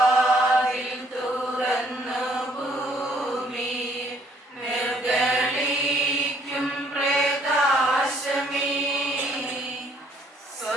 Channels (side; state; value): both; normal; correlation 0.65